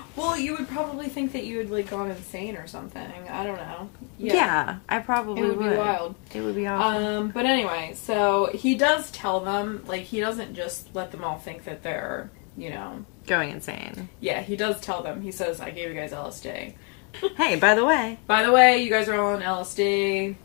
Well, you would probably think that you had, like, gone insane or something. I don't know. Yeah, I probably would. It would be wild. It would be awesome. But anyway, so he does tell them, like, he doesn't just let them all think that they're, you know... Going insane. Yeah, he does tell them. He says, I gave you guys LSD. Hey, by the way. By the way, you guys are all on LSD.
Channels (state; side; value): quieter; right; 37.0 dB